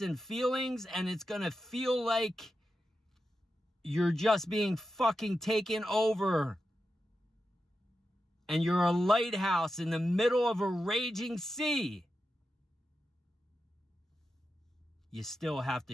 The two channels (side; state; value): both; normal; correlation 0.90